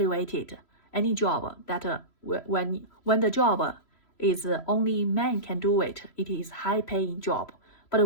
Any job that when the job is only men can do it, it is high paying job.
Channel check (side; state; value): right; late; 3.0 ms